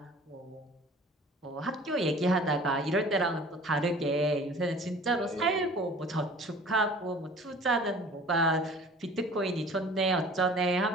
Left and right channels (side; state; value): both; normal; correlation 0.47